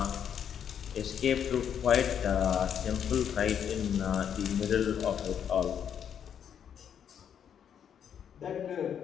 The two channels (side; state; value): right; quieter; 8.5 dB